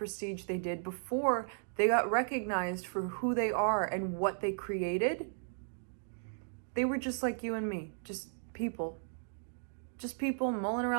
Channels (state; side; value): silent; left; digital silence